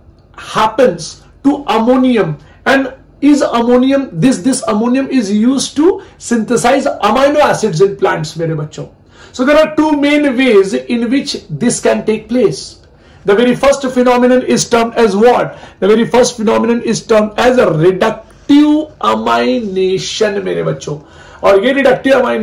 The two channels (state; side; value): identical; both; correlation 1.00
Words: happens to ammonium, and is ammonium this ammonium is used to synthesize amino acids in plants मेरे बच्चों. So there are two main ways in which this can take place. The very first phenomenon is termed as what? The very first phenomenon is termed as a reductive amination मेरे बच्चों, और ये reductive